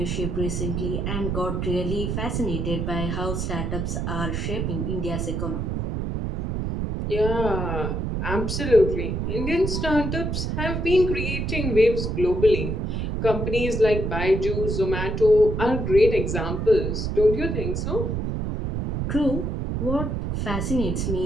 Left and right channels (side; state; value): right; noise; rumble, 1 dB below the sound